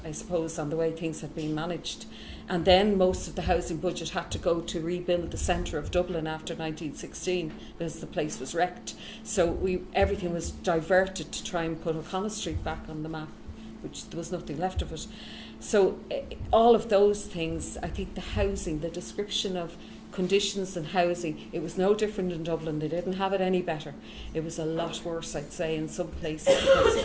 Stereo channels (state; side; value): identical; both; correlation 1.00